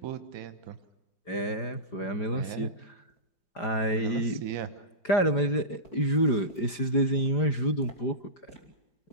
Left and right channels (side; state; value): right; late; 5.0 ms